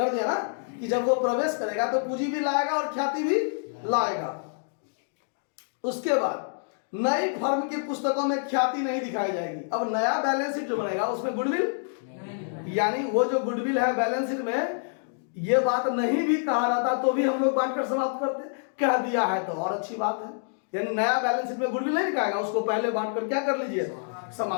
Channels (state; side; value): silent; right; digital silence